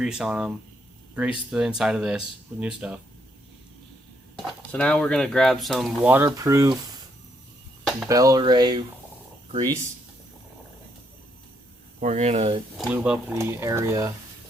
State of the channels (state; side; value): normal; both; correlation 0.74